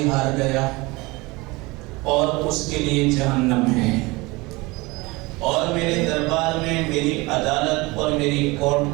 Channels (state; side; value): quieter; left; 23.4 dB